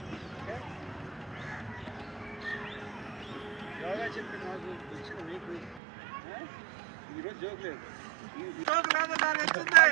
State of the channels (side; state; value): left; drops out; at 5.8 s